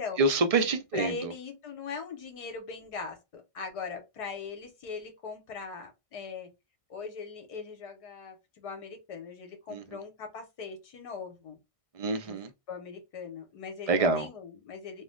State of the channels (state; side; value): late; right; 1.6 ms